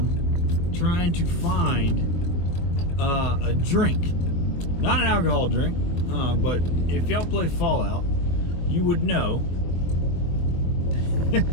trying to find a drink. Not an alcohol drink, but if y'all play Fallout, you would know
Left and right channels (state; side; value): late; right; 23 ms